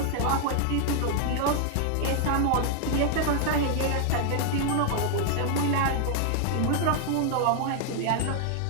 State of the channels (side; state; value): both; different; correlation 0.00